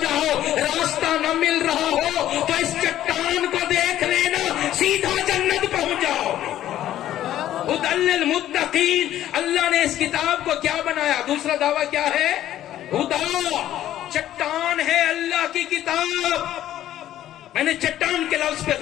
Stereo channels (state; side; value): quieter; right; 12.5 dB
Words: جاؤ، راستہ نہ مل رہا ہو تو اس چٹان کو دیکھ لینا، سیدھا جنت پہنچ جاؤ. ہدی للمتقین. اللہ نے اس کتاب کو کیا بنایا؟ دوسرا دعویٰ کیا ہے؟ ہدا. چٹان ہے اللہ کی کتاب. میں نے چٹان کے لفظ پہ